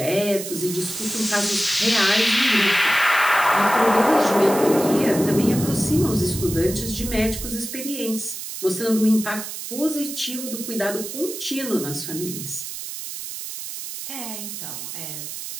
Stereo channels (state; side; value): noise; right; hiss, 8 dB below the sound